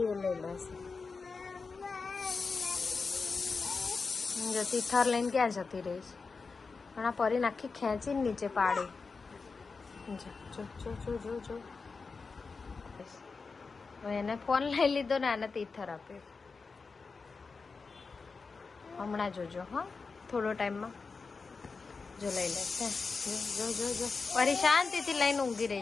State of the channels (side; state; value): right; quieter; 4.6 dB